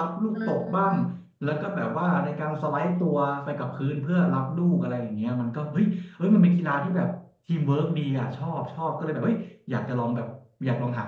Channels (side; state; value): both; identical; correlation 1.00